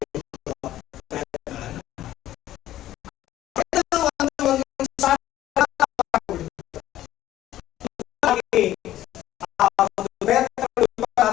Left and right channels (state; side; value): quieter; right; 13.6 dB